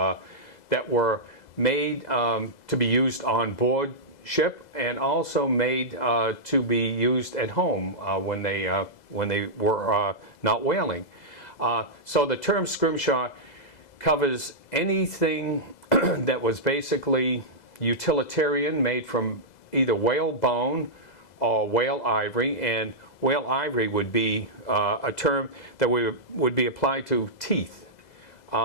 were made to be used on board ship, and also made to be used at home when they were not whaling. So the term Scrimshaw covers anything that was basically utilitarian, made from either whale bone or whale ivory, and whale ivory would be a term that would be applied to teeth.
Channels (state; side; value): late; right; 2.0 ms